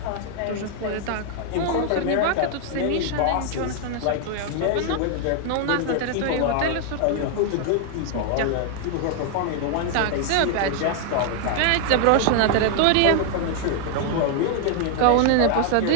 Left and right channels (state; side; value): different; both; correlation 0.00